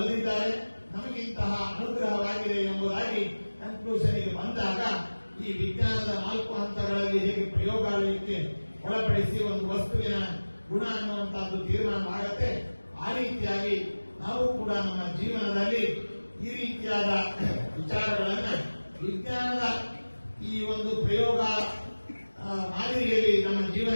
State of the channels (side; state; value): both; inverted; correlation -1.00